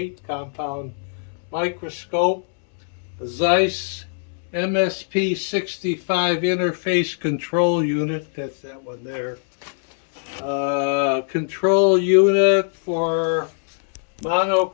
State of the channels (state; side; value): silent; right; 64 dB below the other